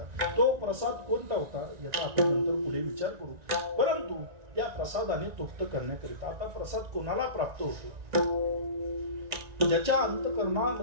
तो प्रसाद कोणता होता याचा आपण नंतर पुढे विचार करू. परंतु त्या प्रसादाने तृप्त करण्याकरिता आता प्रसाद कोणाला प्राप्त होतो? ज्याच्या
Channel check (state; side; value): late; left; 1.9 ms